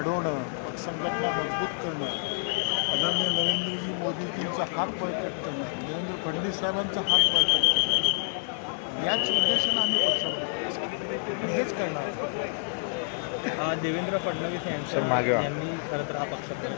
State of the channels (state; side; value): silent; right; 59 dB below the other